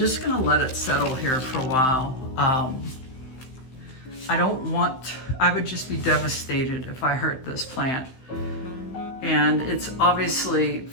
gonna let it settle here for a while. I would just be devastated if I hurt this plant. And it's obviously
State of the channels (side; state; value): right; late; 15 ms